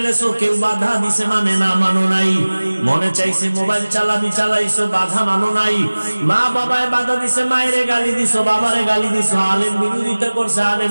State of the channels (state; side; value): inverted; both; correlation -1.00